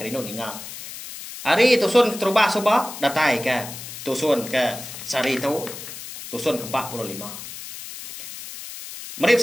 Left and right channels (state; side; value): noise; left; hiss, 11 dB below the sound